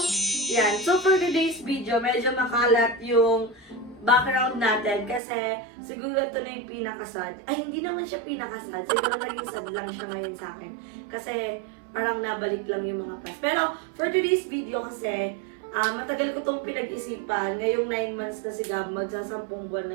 Yan. So for today's video, medyo makalat yung background natin kasi siguro ito na yung pinakasad. Ay, hindi naman siya pinakasad. Siguro naging sad lang siya ngayon sa akin. Kasi parang nabalik lang yung mga past. Pero for today's video kasi, matagal ko itong pinag-isipan. Ngayong 9 months na si Gab, magsasampung buwan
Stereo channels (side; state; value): left; drops out; at 5.2 s